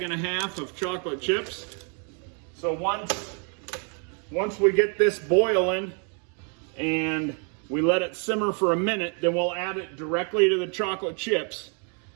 bags of chocolate chips. So once we get this boiling and we let it simmer for a minute, then we'll add it directly to the chocolate chips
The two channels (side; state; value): left; quieter; 39.7 dB